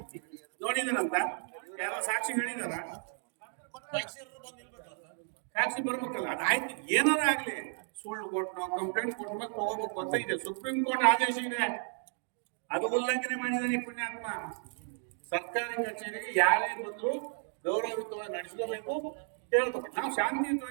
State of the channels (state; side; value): silent; left; 56 dB below the other